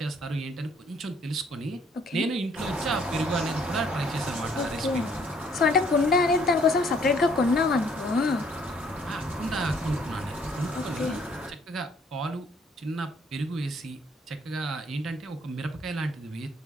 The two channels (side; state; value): both; normal; correlation 0.63